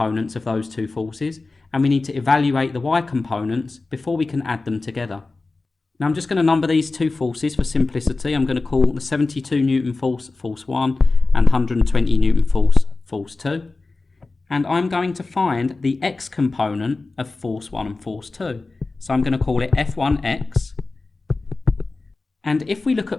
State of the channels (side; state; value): right; quieter; 3.5 dB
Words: of those two forces, and we need to evaluate the y components before we can add them together. Now I'm just going to number these two forces for simplicity. I'm going to call the 72 Newton force, force 1, and 120 Newton force, force 2. And I'm going to find the x component of force 1 and force 2. So I'm going to call it F1x. And if we look